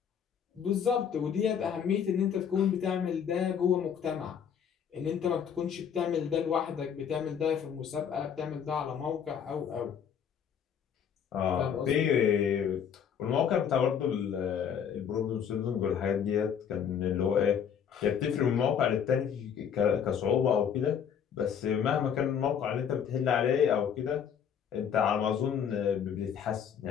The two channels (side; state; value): right; quieter; 8.0 dB